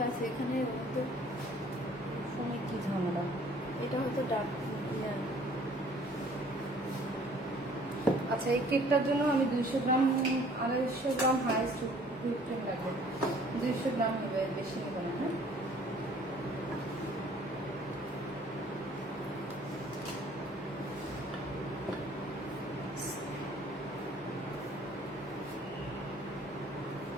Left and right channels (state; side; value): normal; both; correlation 0.55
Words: আছে। এখানে হয়তো ফোনে কি ঝামেলা? এটা হয়তো ডার্ক। আচ্ছা, এই কেকটার জন্য আমি 200 গ্রাম 250 গ্রাম হাইস্ট হুইপ ক্রিম লাগবে। 200 গ্রাম নেবে, বেশি নেবে না, হ্যাঁ?